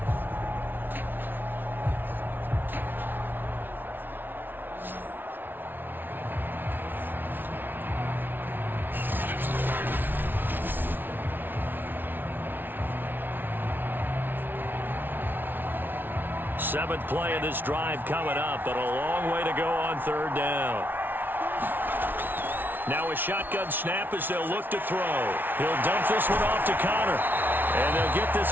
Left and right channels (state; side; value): late; left; 0.094 ms